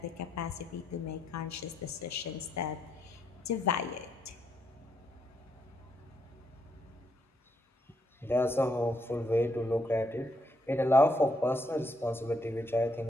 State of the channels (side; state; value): both; normal; correlation 0.76